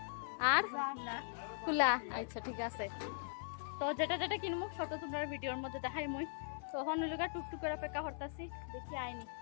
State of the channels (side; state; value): right; silent; 51 dB below the other